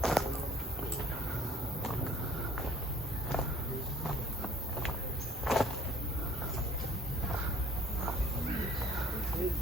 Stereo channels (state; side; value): normal; both; correlation 0.56